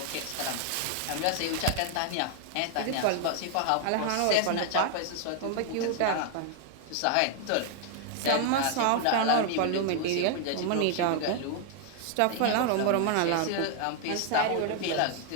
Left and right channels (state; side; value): different; both; correlation 0.00